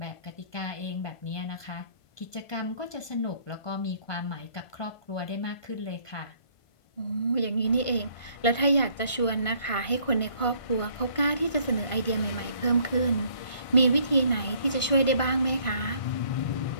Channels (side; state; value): right; late; 1.5 ms